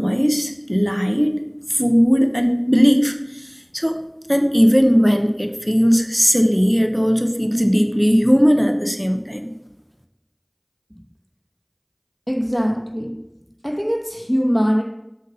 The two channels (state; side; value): identical; both; correlation 1.00